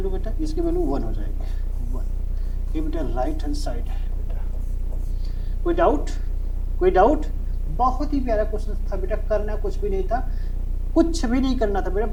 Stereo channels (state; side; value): identical; both; correlation 1.00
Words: बेटा, इसकी वैल्यू 1 हो जाएगी 1। ये बेटा राइट हैंड साइड है बेटा। कोई डाउट, कोई डाउट, बहुत ही प्यारा क्वेश्चन था बेटा, करना कुछ भी नहीं था, कुछ भी नहीं करना था बेटा,